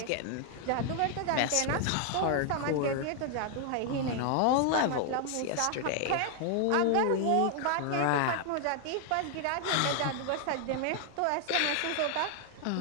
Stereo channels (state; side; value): different; both; correlation 0.00